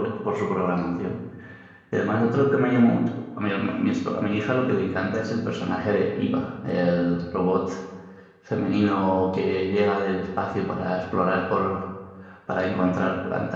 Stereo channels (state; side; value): identical; both; correlation 1.00